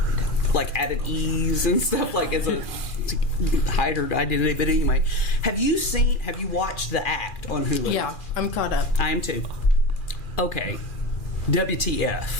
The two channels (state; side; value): late; right; 2.4 ms